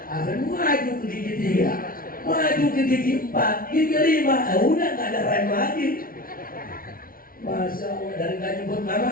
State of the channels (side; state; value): right; late; 0.42 ms